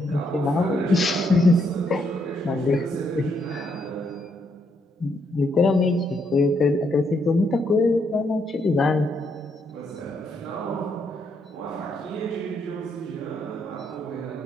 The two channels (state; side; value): normal; both; correlation 0.75